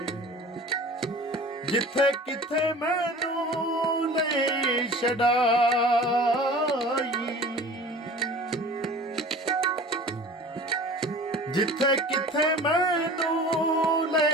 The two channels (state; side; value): normal; both; correlation 0.41